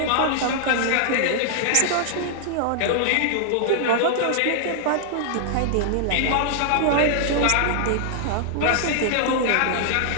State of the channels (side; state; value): both; different; correlation -0.01